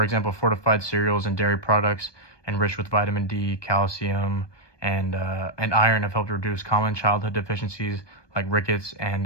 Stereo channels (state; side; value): late; right; 1.2 ms